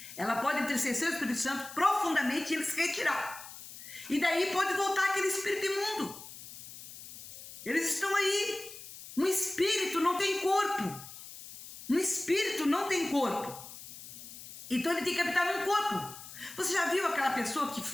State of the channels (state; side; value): noise; left; hiss, 14 dB below the sound